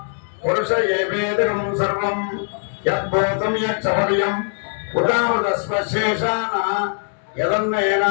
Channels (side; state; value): right; silent; digital silence